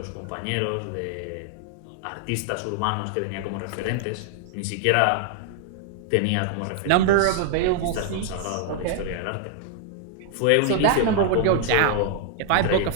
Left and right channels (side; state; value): both; different; correlation 0.00